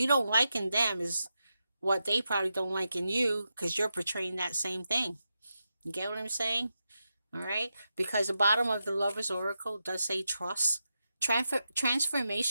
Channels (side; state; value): both; inverted; correlation -0.88